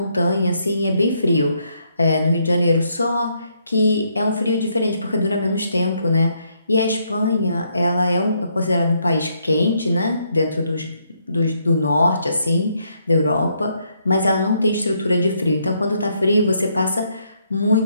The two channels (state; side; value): inverted; both; correlation -0.74